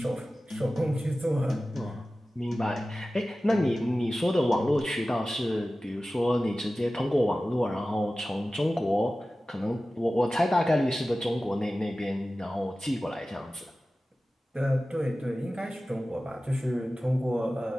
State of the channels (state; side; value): normal; both; correlation 0.96